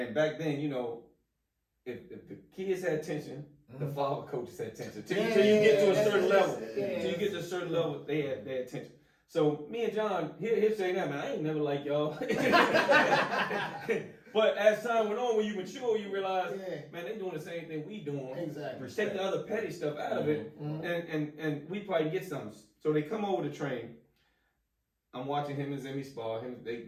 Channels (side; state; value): both; identical; correlation 1.00